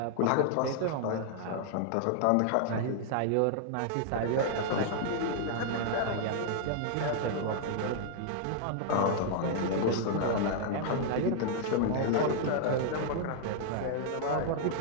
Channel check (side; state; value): both; different; correlation -0.01